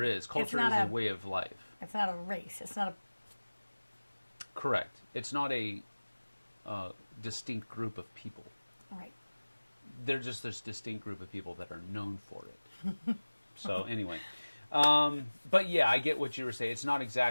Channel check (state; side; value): inverted; both; correlation -1.00